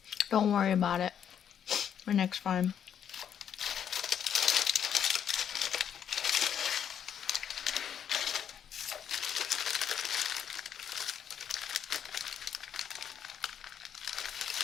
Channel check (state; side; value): quieter; right; 8.7 dB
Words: Don't worry about it. My next time.